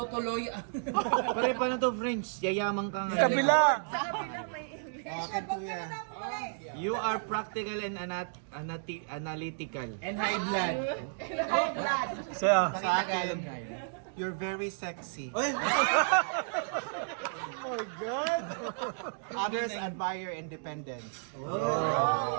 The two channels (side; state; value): left; silent; digital silence